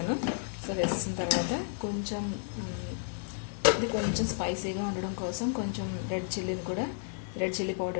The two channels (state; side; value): silent; right; 55 dB below the other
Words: సో వేసేసిన తర్వాత కొంచెం ఇది కొంచెం స్పైసీగా ఉండడం కోసం కొంచెం రెడ్ చిల్లీ